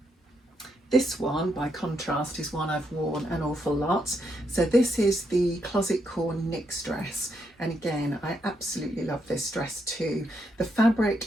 This one, by contrast, is one I've worn an awful lot. So this is the Closet Core Knix dress, and again I absolutely love this dress too. The fabric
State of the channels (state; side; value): normal; both; correlation 0.79